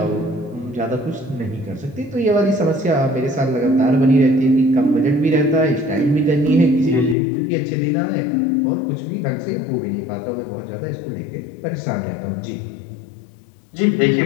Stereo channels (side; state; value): right; drops out; at 7.2 s